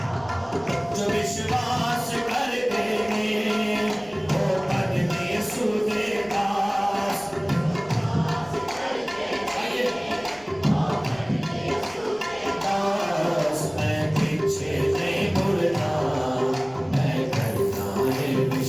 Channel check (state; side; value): noise; left; rumble, 26 dB below the sound